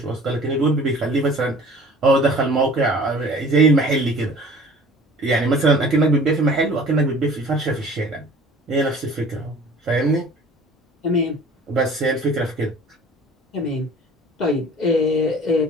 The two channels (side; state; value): both; normal; correlation 0.47